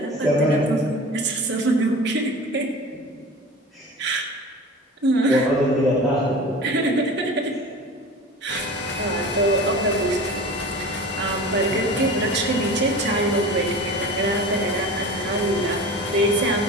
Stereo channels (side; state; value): both; normal; correlation 0.35